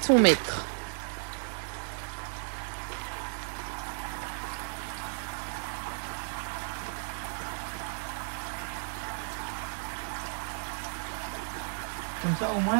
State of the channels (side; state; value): left; silent; 56 dB below the other